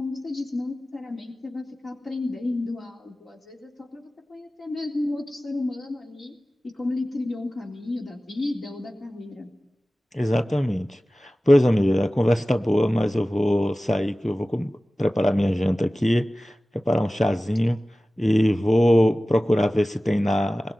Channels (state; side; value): normal; both; correlation 0.97